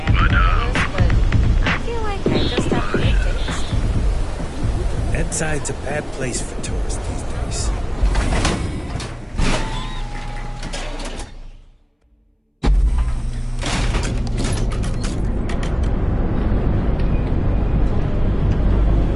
Side's a bad place for tourists these days.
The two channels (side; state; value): both; identical; correlation 1.00